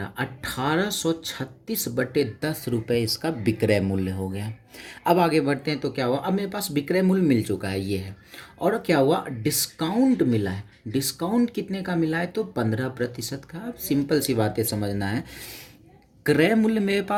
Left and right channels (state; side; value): identical; both; correlation 1.00